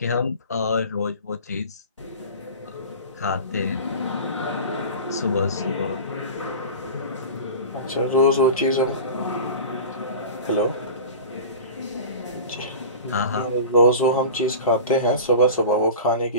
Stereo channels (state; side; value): inverted; both; correlation -0.34